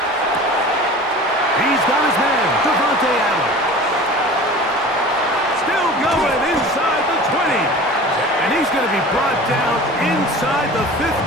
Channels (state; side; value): normal; both; correlation 0.39